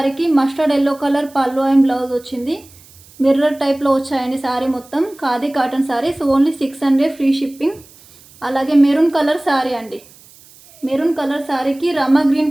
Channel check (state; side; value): noise; right; hiss, 25 dB below the sound